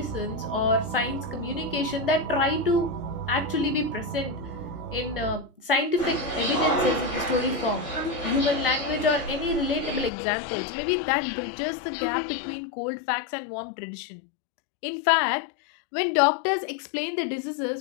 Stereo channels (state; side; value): drops out; right; at 10.1 s